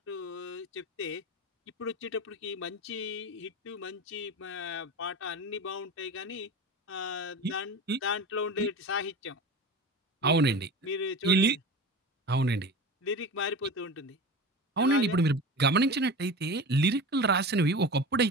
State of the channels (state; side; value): normal; both; correlation 0.31